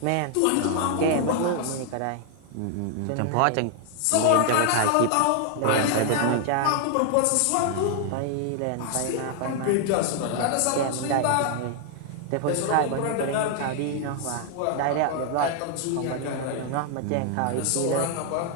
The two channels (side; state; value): both; different; correlation 0.00